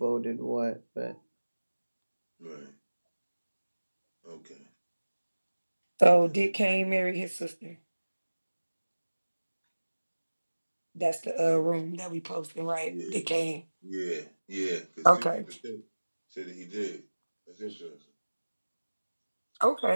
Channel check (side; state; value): both; inverted; correlation -1.00